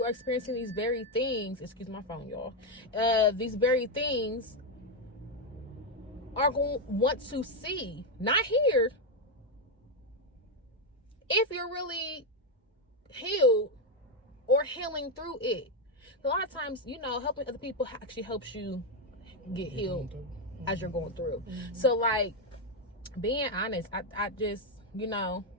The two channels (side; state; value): both; normal; correlation 0.05